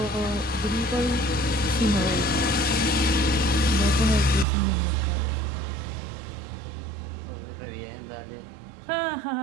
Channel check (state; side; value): drops out; left; at 4.5 s